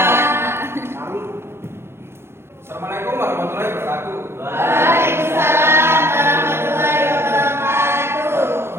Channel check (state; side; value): late; left; 0.12 ms